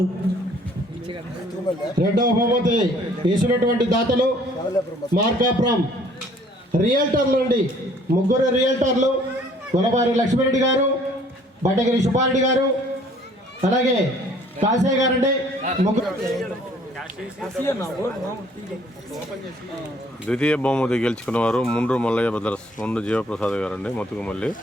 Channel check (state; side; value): normal; both; correlation 0.58